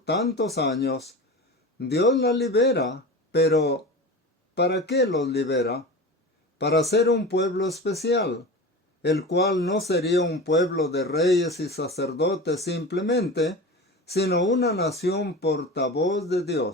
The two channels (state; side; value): normal; both; correlation 0.31